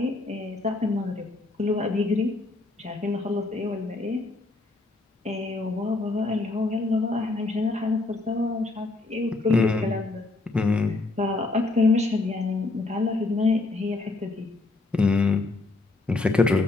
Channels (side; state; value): right; quieter; 3.3 dB